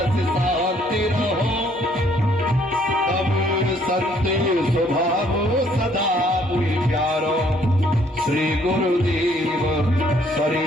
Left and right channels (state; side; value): normal; both; correlation 0.64